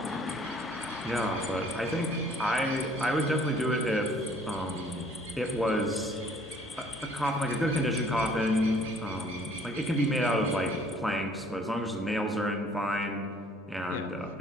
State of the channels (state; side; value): normal; both; correlation 0.57